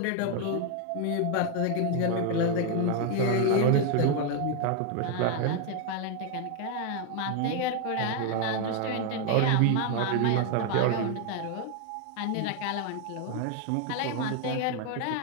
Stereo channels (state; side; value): different; both; correlation 0.01